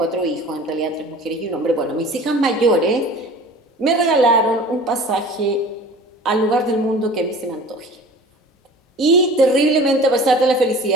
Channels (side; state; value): both; normal; correlation 0.42